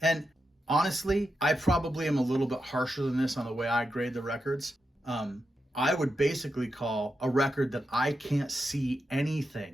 And honestly, I probably am a little bit harsher than this on the way I grade the records. I would basically call a record that I can't see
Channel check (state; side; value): normal; both; correlation 0.87